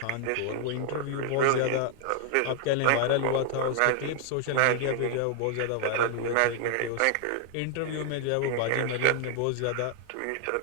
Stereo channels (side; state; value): both; different; correlation 0.00